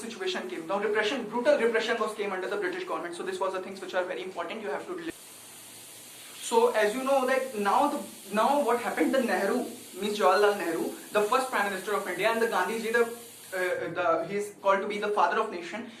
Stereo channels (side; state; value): both; identical; correlation 1.00